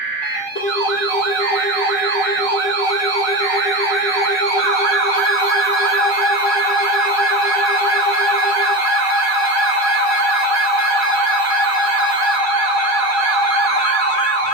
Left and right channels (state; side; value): late; right; 7.8 ms